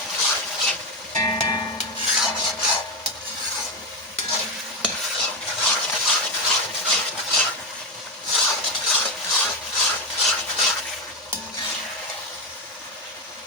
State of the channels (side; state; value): both; normal; correlation 0.12